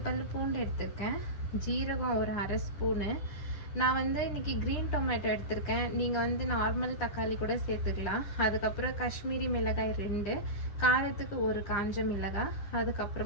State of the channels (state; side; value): late; right; 9.9 ms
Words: பல் பூண்டு எடுத்திருக்கேன், ஜீரகம் ஒரு அரை ஸ்பூனு. நான் இன்றைக்கி க்ரீன் டொமேட்டோ எடுத்திருக்கேன். நீங்கள் நார்மல் தக்காளி கூட சேர்த்துக்கலாம். அதுக்கப்புறம் காஷ்மீரி மிளகாய் 2, காரத்துக்கு ஒரு காஞ்ச மிளகாய்,